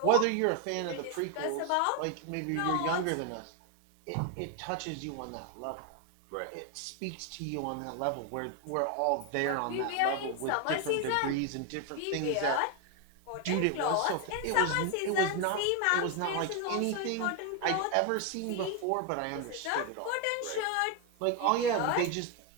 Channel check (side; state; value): both; different; correlation 0.01